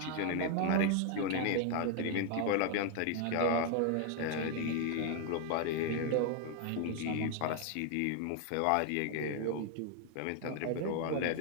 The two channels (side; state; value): both; different; correlation 0.00